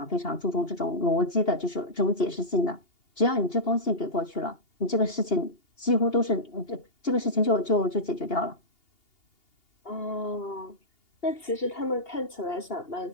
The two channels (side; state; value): right; late; 2.8 ms